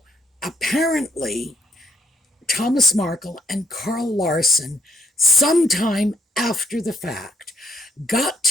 apparently, Thomas Markle and Carl Larson, sometime after the fact, got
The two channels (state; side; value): normal; both; correlation 0.71